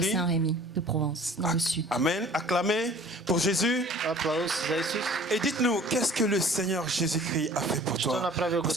Saint-Rémy, de Provence, dans le sud. Amen. Acclamez pour Jésus. Et dites-nous, qu'est-ce que le Seigneur Jésus-Christ a fait pour toi?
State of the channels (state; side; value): normal; both; correlation 0.49